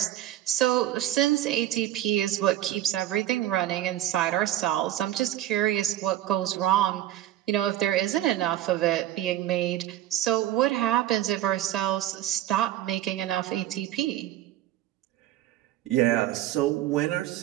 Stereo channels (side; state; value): left; quieter; 13.2 dB